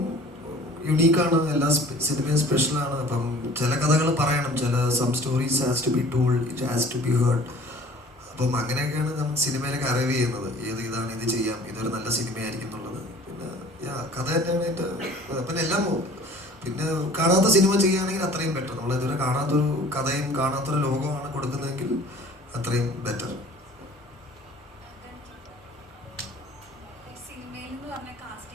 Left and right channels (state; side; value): normal; both; correlation 0.48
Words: യുണീക്കാണ്, എല്ലാ സിനിമയും സ്പെഷ്യലാണ്. അപ്പം ചില കഥകൾ പറയണം, some stories has to be told, it has to be heard. അപ്പം അങ്ങനെയൊക്കെയാണ് നമ്മൾ സിനിമയിലേക്ക് അറൈവ് ചെയ്യുന്നത്. ഇതാണ്, ഇത് ചെയ്യാം, ഇതൊരു നല്ല സിനിമയായിരിക്കും എന്നുള്ളത്. പിന്നെ കഥ തന്നെയാണ് എൻ്റെ. പിന്നെ എല്ലാം പിന്നെ കാണാത്ത സിനിമ ചെയ്യുകയാണെങ്കിൽ അത്രയും ബെറ്റർ. നമ്മൾ ഇതുവരെ കാണാത്തൊരു കഥയും കാണാത്തൊരു ലോകമാണ് കൊടുക്കുന്നതെങ്കിൽ അത്രയും ബെറ്റർ.